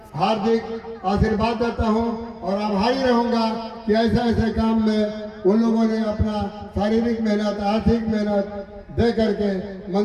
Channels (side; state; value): both; identical; correlation 1.00